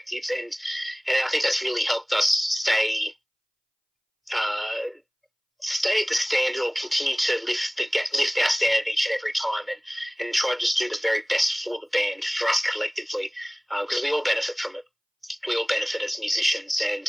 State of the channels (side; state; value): both; identical; correlation 1.00